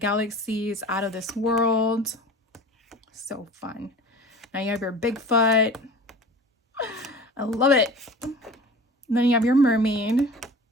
out of this world. So fun. Now you have your Bigfoot. I love it. And then you have your mermaid. And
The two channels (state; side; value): normal; both; correlation 0.39